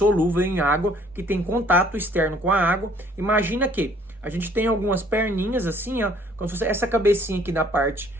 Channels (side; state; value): both; normal; correlation 0.59